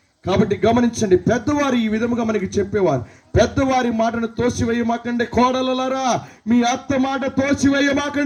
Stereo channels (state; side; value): identical; both; correlation 1.00